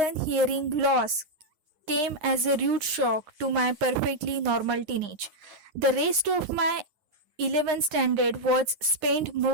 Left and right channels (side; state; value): left; late; 9.7 ms